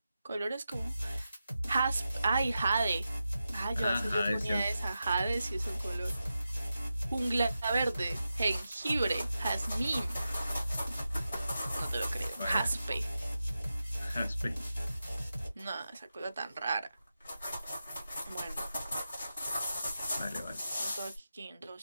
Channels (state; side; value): inverted; both; correlation -0.91